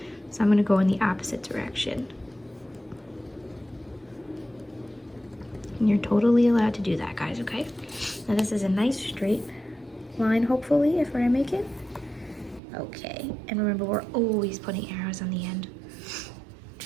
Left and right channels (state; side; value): drops out; left; at 12.6 s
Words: so I'm going to go in the opposite direction. And you're totally allowed to do that, guys, okay? Now this is a nice straight line, hopefully, if I make it. Okay, and remember, we're always putting arrows on the end.